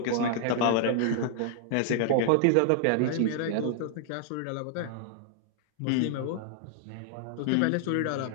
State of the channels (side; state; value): both; different; correlation 0.00